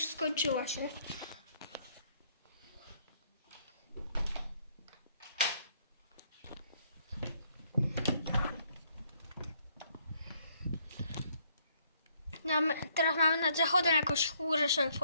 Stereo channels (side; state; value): both; inverted; correlation -0.68